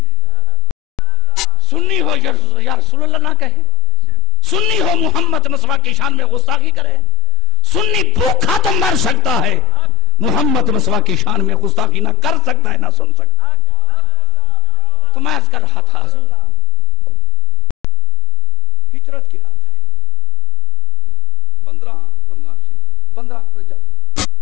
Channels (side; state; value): both; normal; correlation 0.36